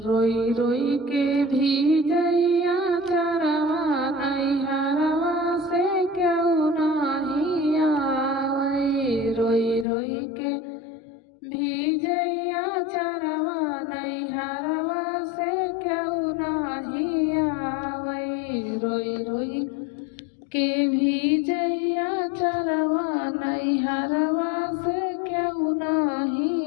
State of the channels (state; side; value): drops out; right; at 9.9 s